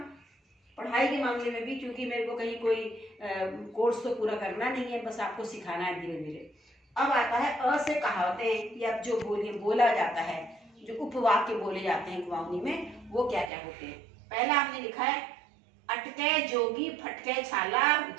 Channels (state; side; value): drops out; left; at 13.5 s